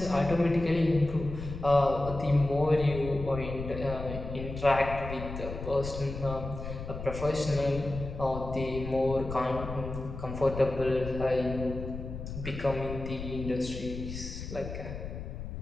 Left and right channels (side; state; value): left; noise; rumble, 8 dB below the sound